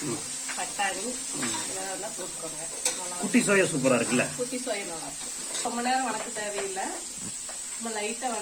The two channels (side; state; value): both; identical; correlation 1.00